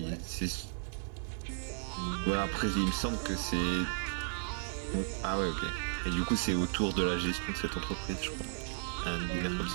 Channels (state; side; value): silent; left; digital silence